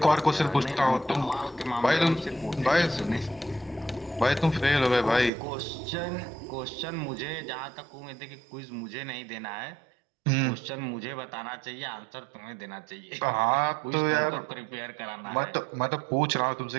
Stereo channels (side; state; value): left; drops out; at 5.3 s